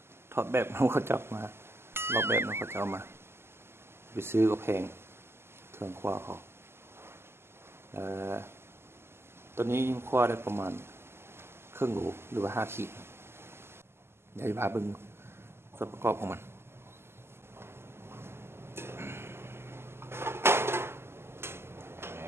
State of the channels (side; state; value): left; late; 0.12 ms